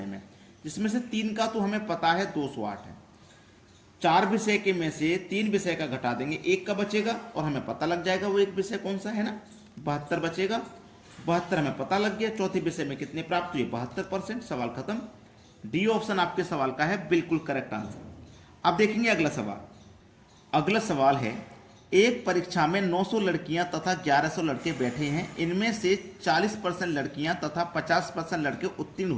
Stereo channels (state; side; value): identical; both; correlation 1.00